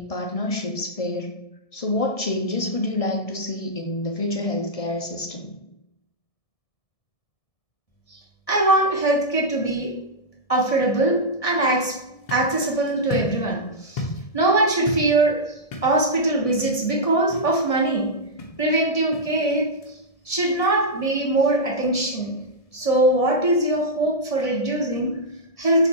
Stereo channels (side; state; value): right; late; 1.7 ms